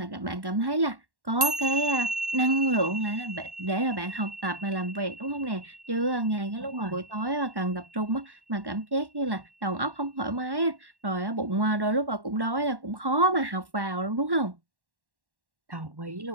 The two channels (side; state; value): left; late; 1.1 ms